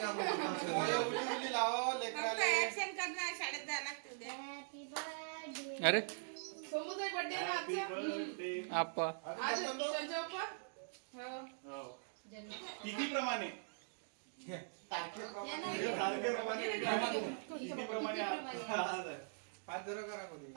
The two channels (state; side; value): silent; left; digital silence